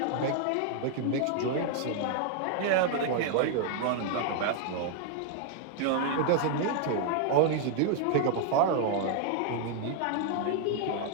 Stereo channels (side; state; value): both; different; correlation 0.00